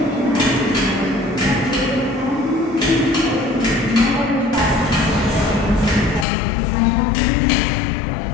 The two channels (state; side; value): drops out; right; at 6.2 s